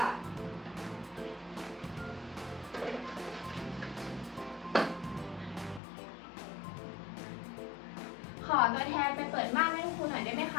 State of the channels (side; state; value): right; drops out; at 5.8 s